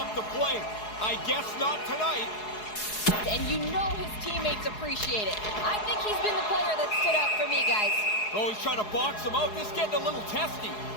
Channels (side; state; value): right; late; 4.7 ms